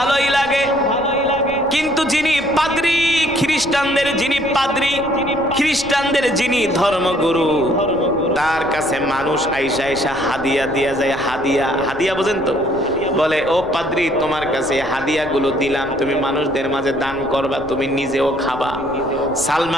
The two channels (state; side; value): noise; left; rumble, 17 dB below the sound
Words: লাগে, কিন্তু যিনি পাদ্রী, খ্রিস্টানদের যিনি পাদ্রী, খ্রিস্টানদের যিনি ধর্মগুরু, তার কাছে মানুষ আইসা আইসা হাদিয়া দিয়া যায়। হাদিয়া, হাদিয়া বোঝেন তো? বলে, ও পাদ্রী, তোমার কাছে হাদিয়াগুলো দিলাম, তুমি মানুষদের মাঝে দান করবা, তুমি নিজেও খাবা।